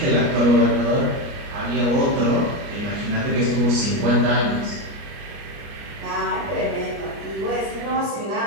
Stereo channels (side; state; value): left; late; 29 ms